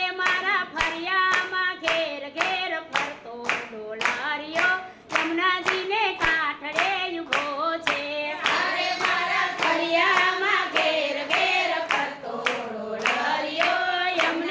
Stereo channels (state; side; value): identical; both; correlation 1.00